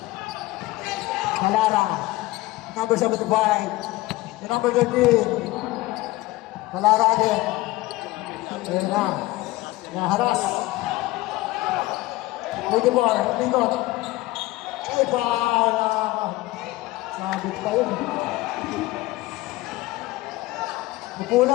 Kalara. Number 75. The number 13. Kalara again. Ayan na. Naharas. With the ball. Lingot. Ay, para. Sabit pa yun.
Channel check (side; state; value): right; quieter; 19.0 dB